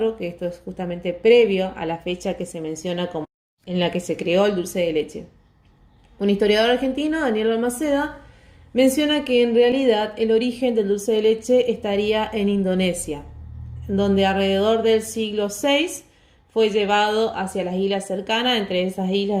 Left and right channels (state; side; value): identical; both; correlation 1.00